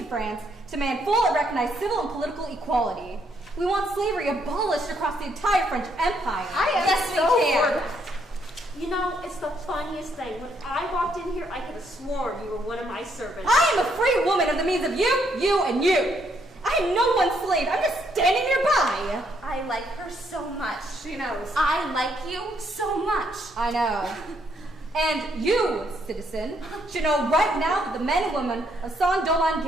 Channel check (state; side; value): normal; both; correlation 0.72